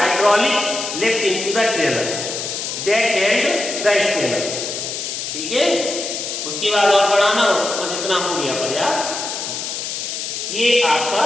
lift into the trailer that held the scanner. ठीक है, उसके बाद और बढ़ाना, बस इतना हो गया पर यार। ये आपका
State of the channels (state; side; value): noise; left; hiss, 5 dB below the sound